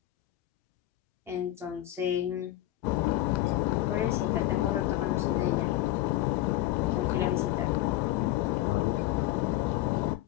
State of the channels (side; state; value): right; quieter; 15.2 dB